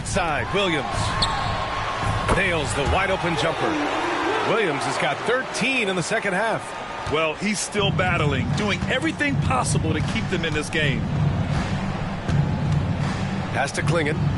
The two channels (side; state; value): both; identical; correlation 1.00